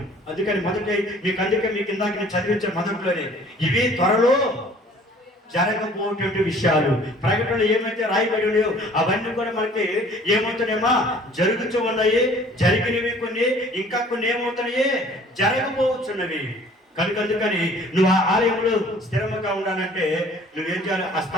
అందుకని మీకు ఇందాక నేను చదివించిన మొదట్లోనే ఇవి త్వరలో జరగబోయేటువంటి విషయాలు. ప్రకటనలు ఏమైతే రాయబడి ఉన్నాయో అవన్నీ కూడా మనకి ఏమవుతున్నాయమ్మా, జరుగుతూ ఉన్నాయి. జరిగినవి కొన్ని, ఇంకా కొన్ని ఏమవుతున్నాయి, జరగబోతున్నవి. అందుకని నువ్వు ఆ ఆలయంలో స్థిరముగా ఉండాలంటే నువ్వేం చేయాలి, ఆ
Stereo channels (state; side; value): normal; both; correlation 0.53